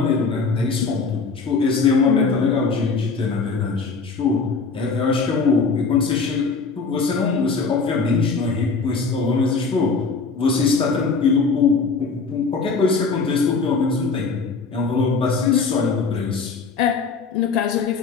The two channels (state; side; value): quieter; right; 4.7 dB